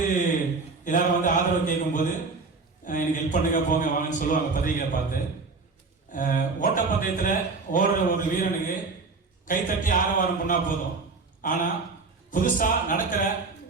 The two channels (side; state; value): left; quieter; 4.1 dB